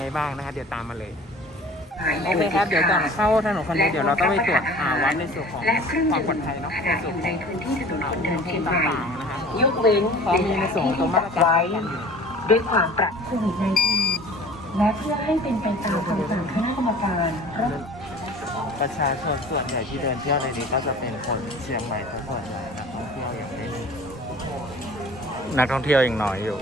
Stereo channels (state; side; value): normal; both; correlation 0.45